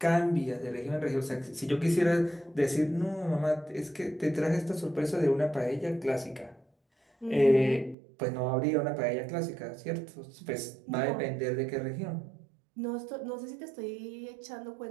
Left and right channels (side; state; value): left; drops out; at 8.0 s